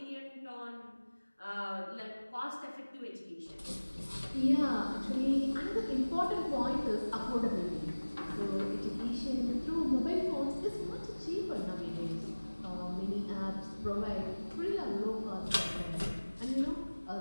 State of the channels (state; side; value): inverted; both; correlation -1.00